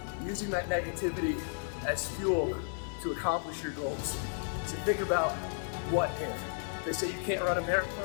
using that negativity as fuel to accomplish your goals. So think about what if. They say you can't run a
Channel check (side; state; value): right; silent; 56 dB below the other